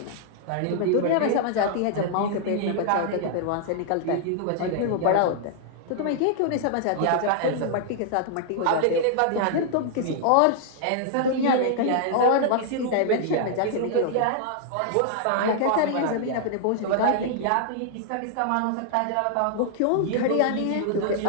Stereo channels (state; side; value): different; both; correlation -0.01